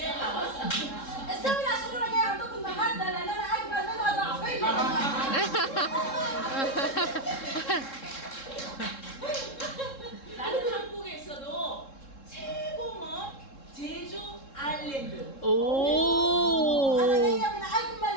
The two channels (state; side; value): late; right; 3.7 ms